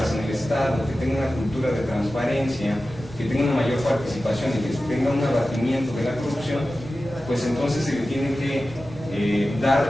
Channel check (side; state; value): both; normal; correlation 0.94